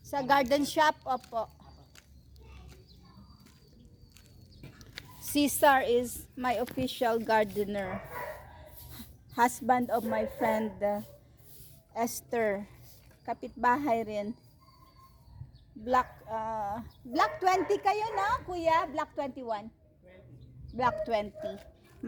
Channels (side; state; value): both; identical; correlation 1.00